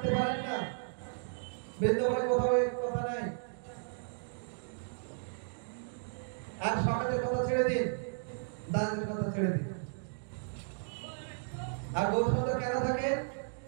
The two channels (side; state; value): left; silent; digital silence